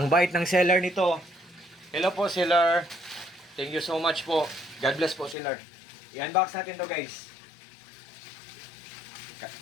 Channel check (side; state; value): right; drops out; at 5.4 s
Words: bait ng seller nito. Hello po seller. Thank you so much po. God bless po seller. I-unbox natin to guys.